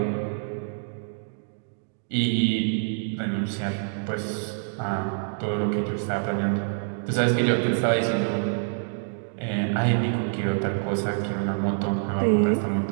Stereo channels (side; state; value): left; silent; digital silence